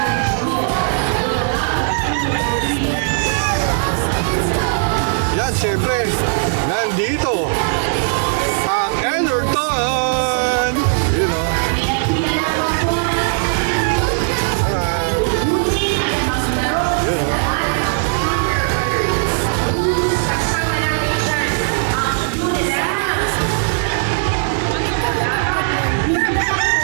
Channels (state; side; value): silent; left; digital silence